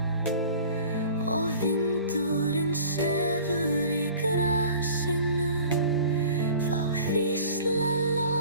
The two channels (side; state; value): both; inverted; correlation -0.45